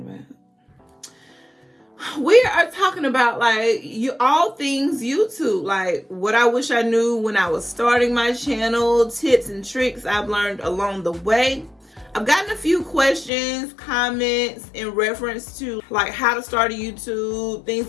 about? We are talking about all things YouTube, like what I wish I knew when I was starting my channel, tips and tricks I've learned along the way. I've gotten a few questions, comments in reference to like how to start a YouTube, things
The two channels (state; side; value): drops out; right; at 13.3 s